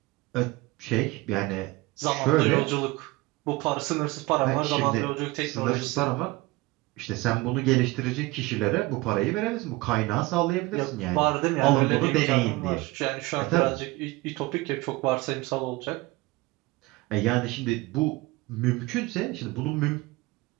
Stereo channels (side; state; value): left; quieter; 21.2 dB